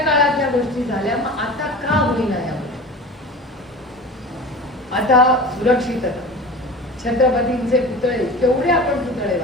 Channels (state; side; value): normal; both; correlation 0.35